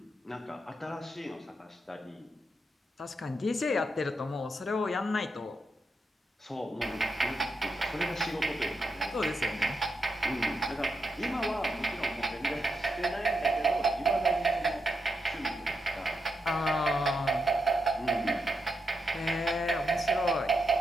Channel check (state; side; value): normal; both; correlation 0.84